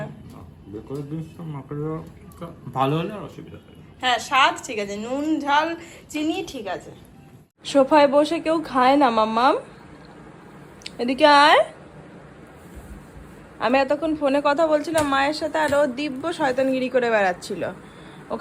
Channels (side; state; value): both; identical; correlation 1.00